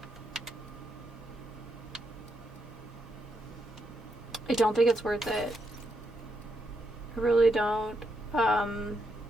I don't think it's worth it. I really don't.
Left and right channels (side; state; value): both; normal; correlation 0.80